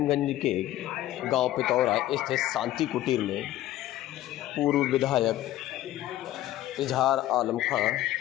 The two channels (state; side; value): quieter; right; 14.4 dB